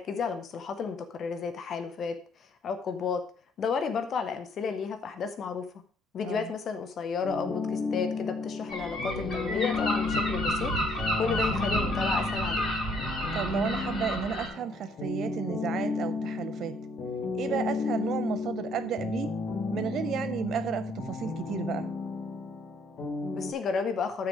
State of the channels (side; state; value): both; normal; correlation 0.65